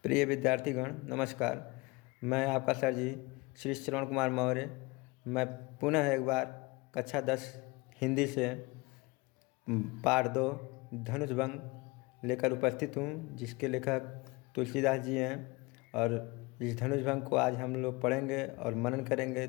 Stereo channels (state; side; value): quieter; right; 25.0 dB